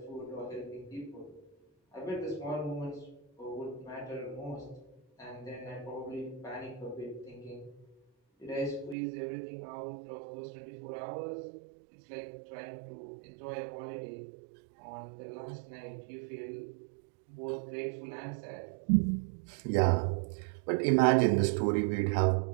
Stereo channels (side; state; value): left; drops out; at 9.0 s